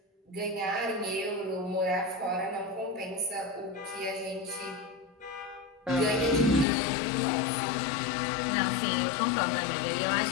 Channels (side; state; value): right; drops out; at 6.7 s